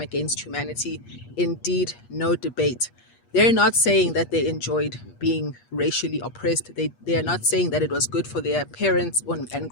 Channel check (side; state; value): right; late; 8.4 ms